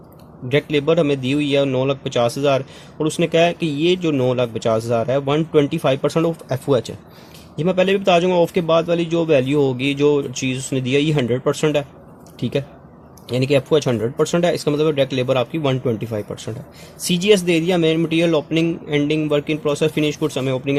labour हमें दी हुई है 9,50,000 और उसने कहा है कि ये जो 9,50,000 है 125% ऑफ FOH है। ये मैं पहले भी बता दूंगा, ऑफ के बाद वाली जो वैल्यू होगी, जो चीज़ उसने दिया, ये 100% है। ठीक है, यानी कि FOH 100% है, इसका मतलब डायरेक्ट लेबर आपकी 125% है। CGS दे दिया, main material, opening ending, work in process, finish goods हमें ओपनिंग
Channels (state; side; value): identical; both; correlation 1.00